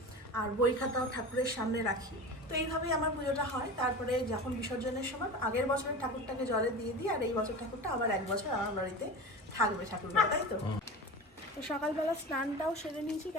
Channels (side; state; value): both; normal; correlation 0.31